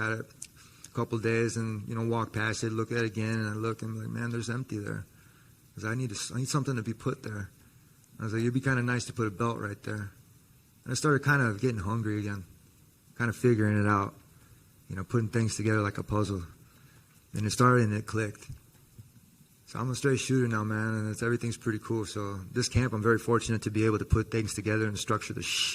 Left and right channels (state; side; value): identical; both; correlation 1.00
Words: it a couple of days and, walked past it, look at it again, and I look and I'm like, man, there's empty there. Because I need something to be put there. I was like, it'd be kind of nice to put a belt right there. And I started kind of getting hungry again, kind of figuring it out, putting things together like a puzzle. And it started and it clicked. So I'm a straight shooter now, man, and everything's pretty cool. So this camp, I'm very fortunate to be able to put things together and structure the